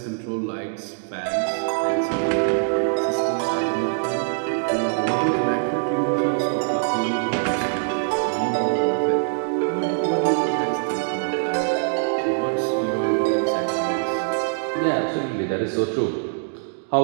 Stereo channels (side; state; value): left; silent; digital silence